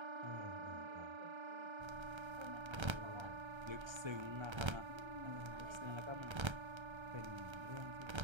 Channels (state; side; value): late; left; 1.3 ms